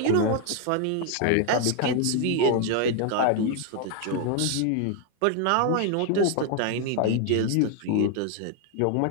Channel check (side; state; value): both; different; correlation 0.00